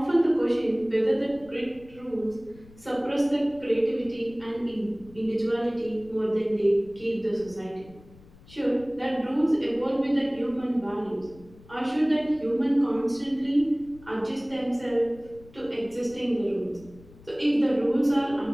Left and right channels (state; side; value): noise; left; rumble, 23 dB below the sound